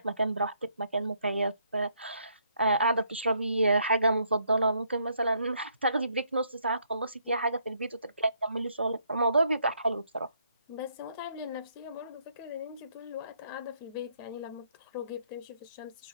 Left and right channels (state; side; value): inverted; both; correlation -0.71